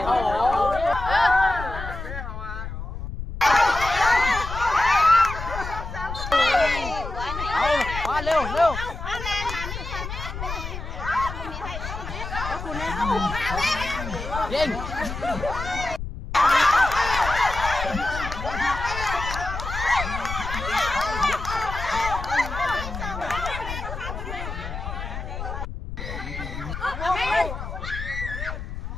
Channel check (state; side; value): noise; left; rumble, 7 dB below the sound